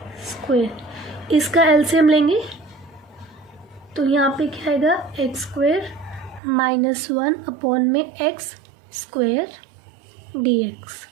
स्क्वेयर, इसका LCM लेंगे तो यहाँ पे क्या आएगा, एक्स स्क्वेयर माइनस 1 अपॉन में X square D X.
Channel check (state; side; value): drops out; left; at 6.4 s